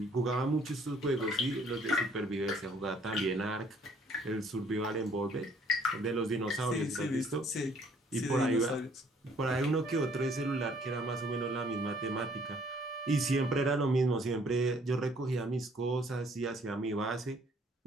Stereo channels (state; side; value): normal; both; correlation 0.61